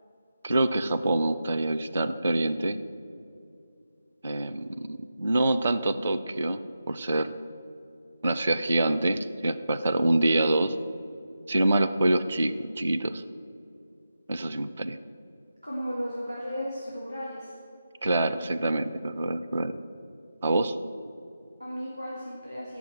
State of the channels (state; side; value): inverted; both; correlation -0.89